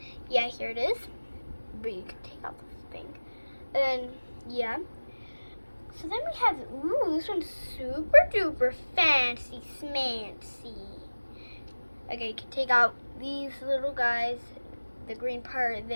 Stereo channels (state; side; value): inverted; both; correlation -1.00